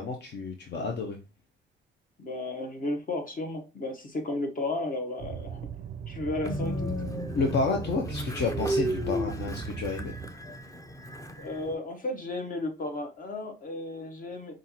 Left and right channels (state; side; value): normal; both; correlation 0.40